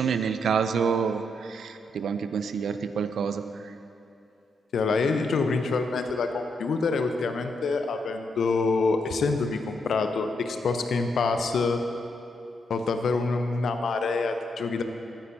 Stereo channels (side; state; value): both; normal; correlation 0.79